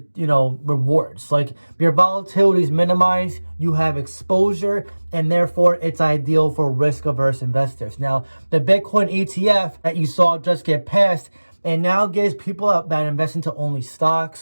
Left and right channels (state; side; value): inverted; both; correlation -1.00